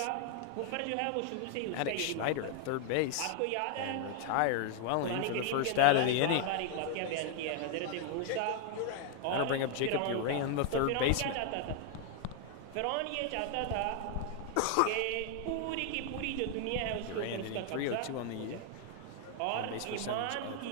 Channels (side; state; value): both; different; correlation 0.00